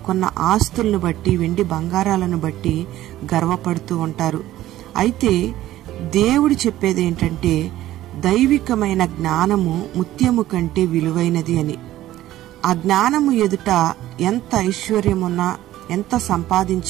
ఆస్తులను బట్టి, వెండి బంగారాలను బట్టి గర్వపడుతూ ఉంటారు. అయితే దేవుడు చెప్పేది ఏంటంటే, దైవికమైన జ్ఞానము ముత్యము కంటే విలువైనది అని. ఆ జ్ఞానము ఎదుట ఎంత ఐశ్వర్యమున్నా, ఎంత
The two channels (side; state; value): left; quieter; 14.4 dB